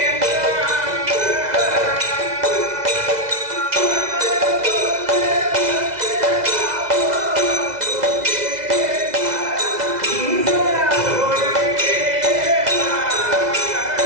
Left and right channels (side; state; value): left; late; 2.0 ms